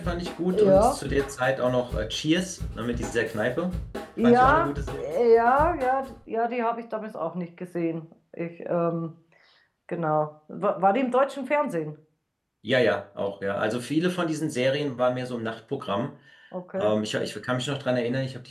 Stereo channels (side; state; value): both; identical; correlation 1.00